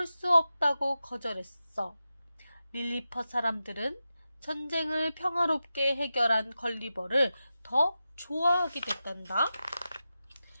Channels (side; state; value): both; inverted; correlation -0.92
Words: 수 없다고 거절했어. 릴리퍼 사람들은 전쟁을 평화롭게 해결한 걸리버를 더 좋아하게 됐단다.